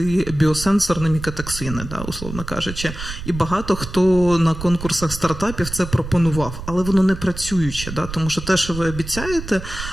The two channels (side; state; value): right; noise; rumble, 10 dB below the sound